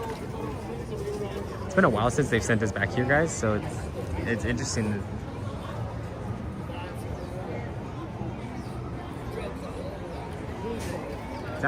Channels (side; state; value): both; identical; correlation 1.00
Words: It's been a while since they've sent us back here, guys, so it's interesting. It's